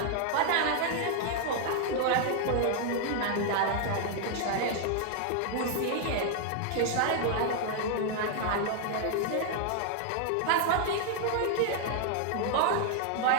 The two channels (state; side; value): different; both; correlation 0.00